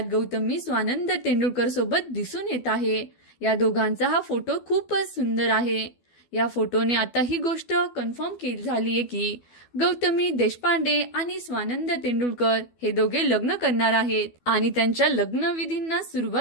गौतमी स्वानंद तेंडुलकर सोबत दिसून येत आहे। या दोघांचा हा फोटो खूपच सुंदर आहे। या फोटोने आता ही गोष्ट कन्फर्म केली झाली आहे की गौतमी देशपांडे आणि स्वानंद तेंडुलकर हे दोघे लग्न करणार आहेत आणि त्यांच्या लग्नविधींना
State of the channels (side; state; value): right; late; 12 ms